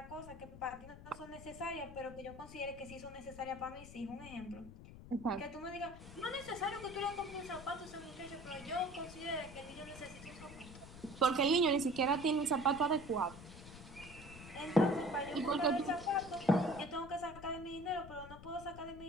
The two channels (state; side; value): noise; left; rumble, 15 dB below the sound